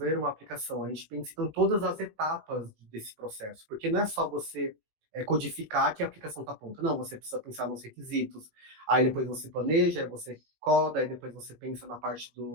uma aplicação, a gente pensa então, em todas as etapas desse processo, porque não é só você codificar que a aplicação está pronta. Não, você precisa pensar nos requisitos, aí depois você planeja, aí você coda, aí depois você pensa na parte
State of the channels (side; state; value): left; late; 19 ms